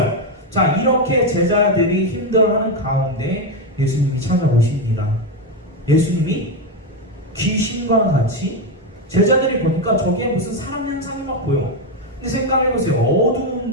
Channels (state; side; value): normal; both; correlation 0.08